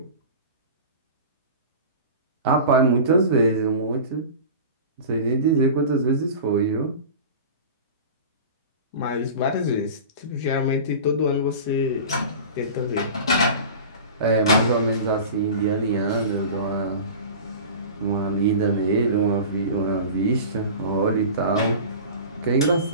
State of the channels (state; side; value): inverted; both; correlation -0.35